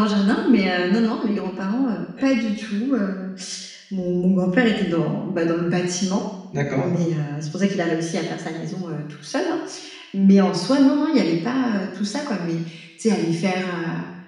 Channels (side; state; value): both; identical; correlation 1.00